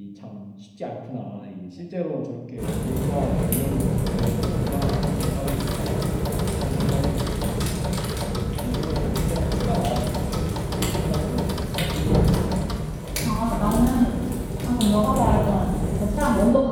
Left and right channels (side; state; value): both; identical; correlation 1.00